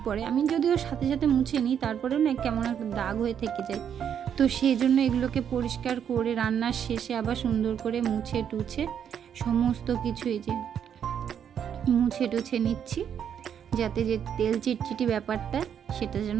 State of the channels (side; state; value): left; quieter; 8.5 dB